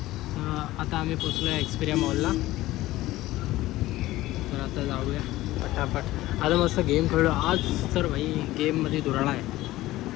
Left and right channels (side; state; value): right; quieter; 16.8 dB